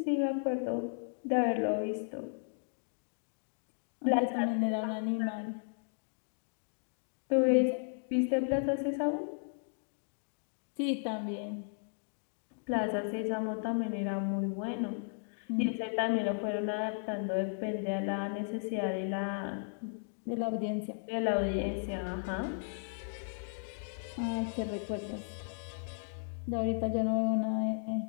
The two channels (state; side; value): silent; right; digital silence